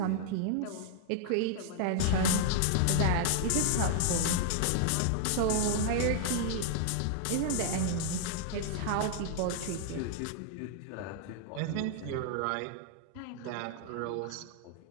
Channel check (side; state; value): both; different; correlation -0.01